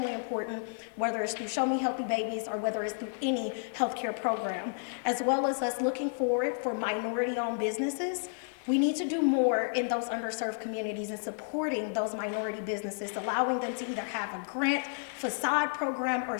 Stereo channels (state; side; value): silent; right; digital silence